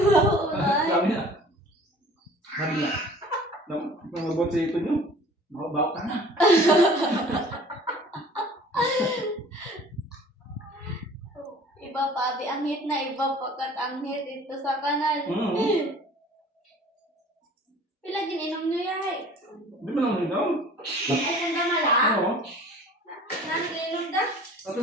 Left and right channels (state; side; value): normal; both; correlation 0.47